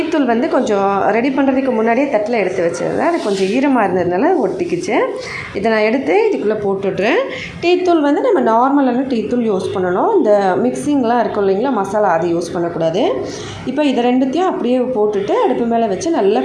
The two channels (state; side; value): identical; both; correlation 1.00